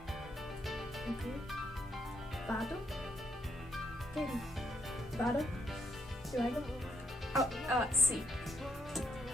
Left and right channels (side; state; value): both; normal; correlation 0.74